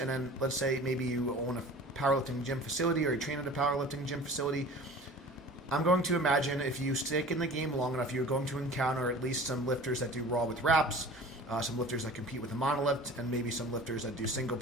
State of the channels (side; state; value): both; normal; correlation 0.42